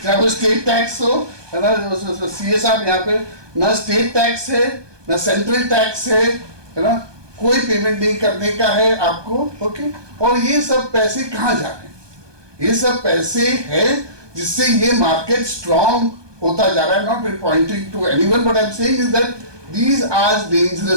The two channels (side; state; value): left; late; 1.2 ms